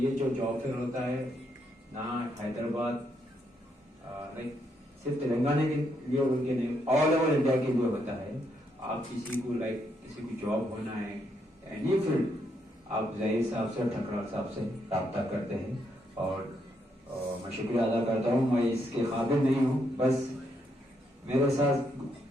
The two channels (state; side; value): normal; both; correlation 0.76